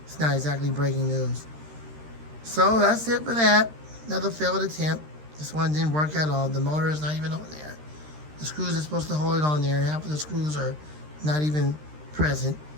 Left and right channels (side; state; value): left; late; 13 ms